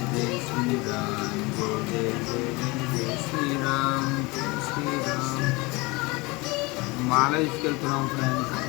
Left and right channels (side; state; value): right; quieter; 24.7 dB